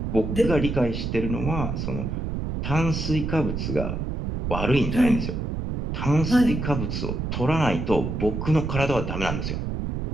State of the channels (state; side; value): noise; right; rumble, 3 dB below the sound